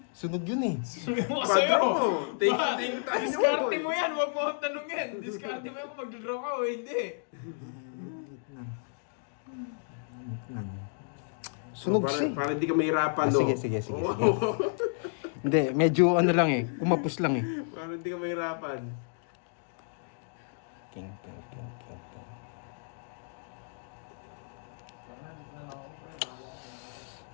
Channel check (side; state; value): right; silent; digital silence